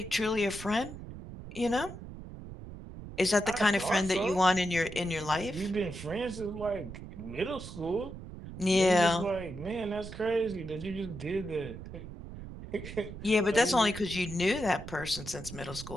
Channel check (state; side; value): noise; right; rumble, 12 dB below the sound